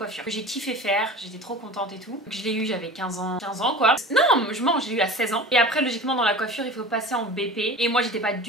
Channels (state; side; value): normal; both; correlation 0.36